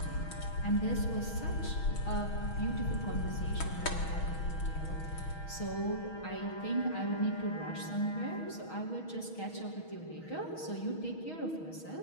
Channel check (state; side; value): late; right; 6.3 ms